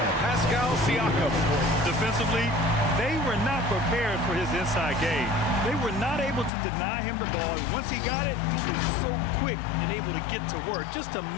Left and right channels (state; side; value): drops out; right; at 6.5 s